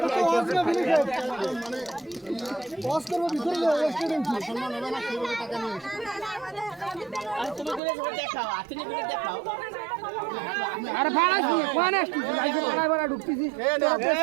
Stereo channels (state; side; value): drops out; left; at 7.8 s